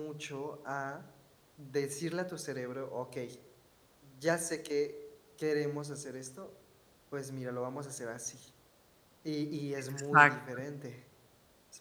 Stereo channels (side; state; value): both; identical; correlation 1.00